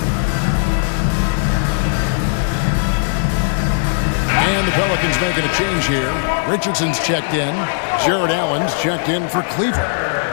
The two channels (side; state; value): right; silent; digital silence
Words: And the Pelicans making a change here. Richardson's checked in. Jared Allen's checked in for Cleveland.